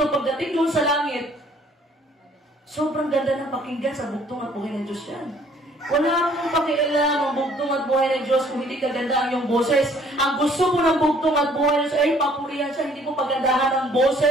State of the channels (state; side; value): normal; both; correlation 0.59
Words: pagdating doon sa langit, sobrang ganda ng pakinggan sa bugtong at buhay ng Diyos yan. Wala akong pakialam ang bugtong at buhay ng Diyos kung hindi kaganda ang iyong boses. Ang gusto mo ng bugtong at buhay ng Diyos ay papurihan siya, hindi mo pagandahan ang